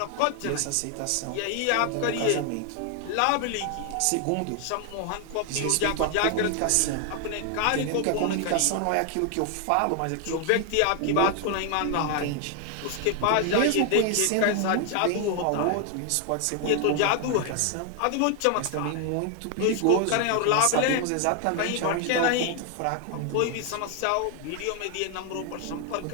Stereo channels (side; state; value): both; different; correlation 0.00